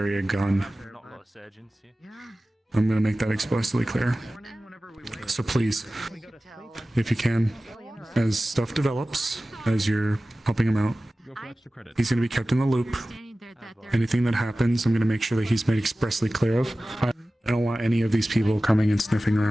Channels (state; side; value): normal; both; correlation 0.96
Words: a gun. I'm gonna make that explicitly clear. So please, if you can, as stuff develops, as you're helping him out, he's gonna be kept in the loop. Anything that happens, I'm gonna make sure that he's made expressly clear of. I don't want any of these people coming and sniffing